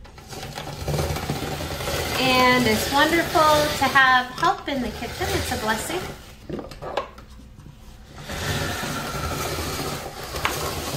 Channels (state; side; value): identical; both; correlation 1.00